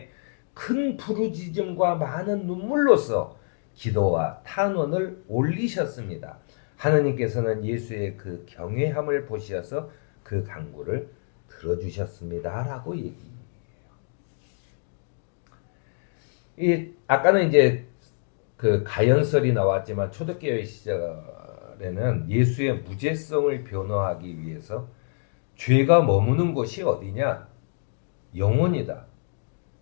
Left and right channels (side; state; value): right; silent; digital silence